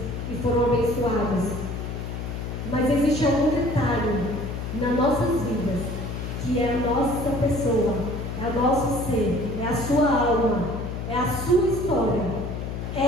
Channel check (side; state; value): left; noise; hum, 5 dB below the sound